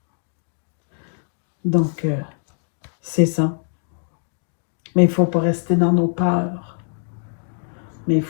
Donc, c'est ça. Mais il ne faut pas rester dans nos peurs. Mais il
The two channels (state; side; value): silent; right; digital silence